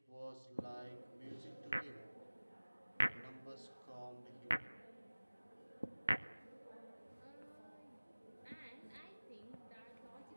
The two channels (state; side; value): inverted; both; correlation -1.00